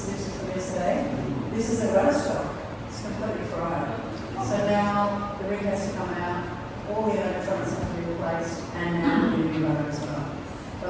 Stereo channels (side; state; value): both; identical; correlation 1.00